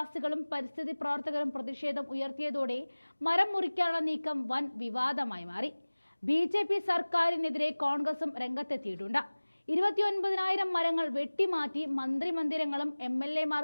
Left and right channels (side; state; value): both; inverted; correlation -1.00